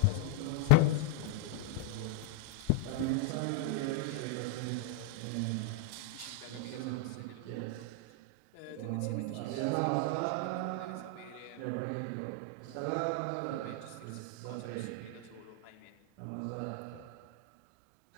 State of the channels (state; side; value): different; both; correlation 0.00